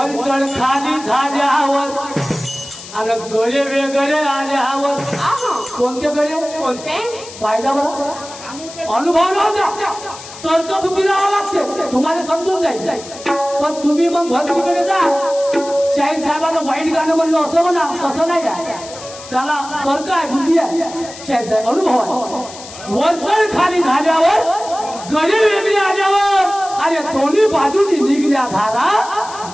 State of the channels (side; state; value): left; noise; hiss, 15 dB below the sound